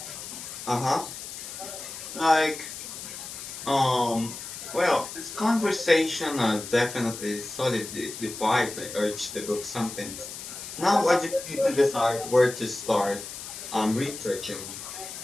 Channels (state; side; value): noise; left; hiss, 10 dB below the sound